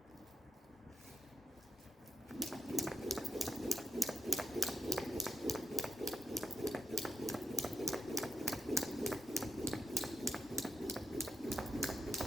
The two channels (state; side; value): normal; both; correlation 0.88